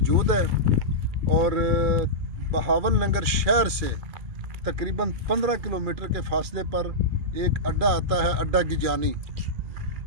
है। और बहावलनगर शहर से तकरीबन 15 किलोमीटर के फासले पर एक अड्डा आता है, अड्डा गिजानी,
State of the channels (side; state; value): left; late; 2.4 ms